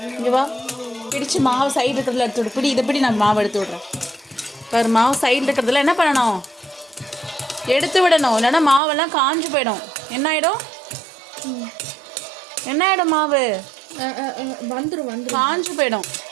இங்கே வா, பிடிச்சு மாவு சைடு இருக்கிறதுல எடுத்து விடு. பிடி, இதை பிடி, நான் மாவு எடுத்து விட்றேன். பாரு, மாவு சைடில் இருக்கிறதுல என்ன பண்ணணும், எடுத்து விடணும். இல்லைன்னா மாவெல்லாம் காஞ்சு போயிடும். என்ன ஆகிடும், என்ன ஆகிடும், மாவு வந்துடும், காஞ்சு போயிடும்.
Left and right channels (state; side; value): drops out; left; at 8.8 s